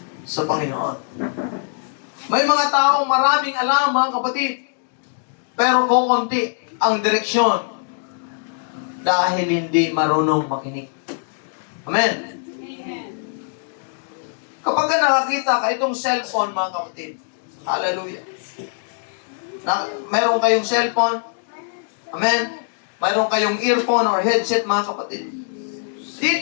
sa Panginoon. May mga taong maraming alam, mga kapatid, pero kukunti ang direksyon dahil hindi marunong makinig. Amen. Kapag ka nakakita ka itong cellphone, mga kapatid, hallelujah. Meron kayong cellphone, amen. Meron kayong earphone or headset, mga kapatid.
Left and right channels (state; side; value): silent; right; digital silence